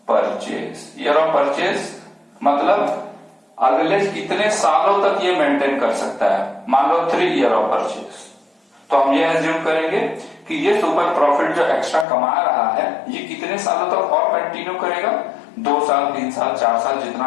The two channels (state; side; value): drops out; right; at 12.1 s